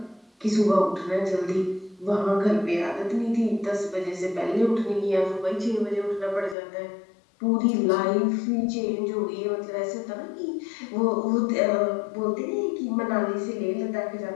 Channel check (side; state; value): right; drops out; at 6.6 s